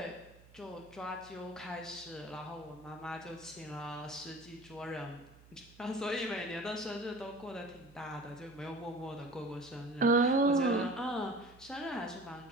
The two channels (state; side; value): noise; right; hum, 23 dB below the sound